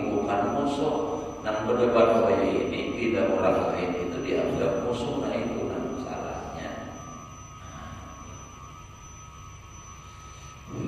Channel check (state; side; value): identical; both; correlation 1.00